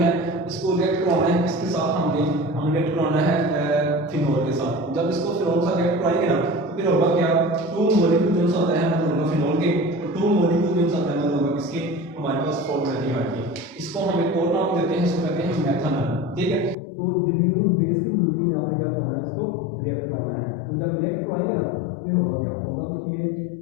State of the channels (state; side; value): drops out; right; at 16.8 s